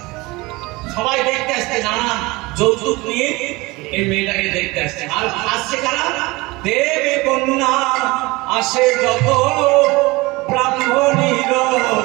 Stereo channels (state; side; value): quieter; left; 22.6 dB